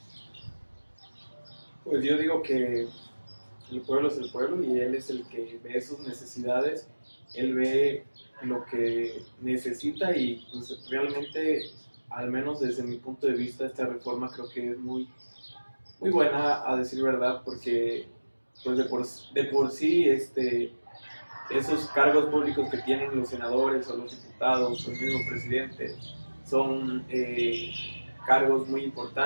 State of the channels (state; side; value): inverted; both; correlation -1.00